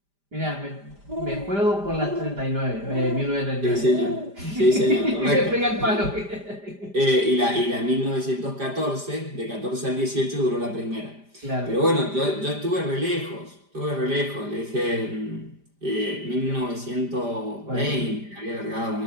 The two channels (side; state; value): left; late; 5.0 ms